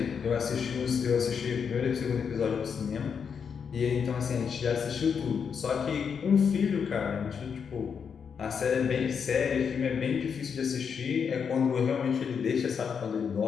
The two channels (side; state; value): right; quieter; 6.7 dB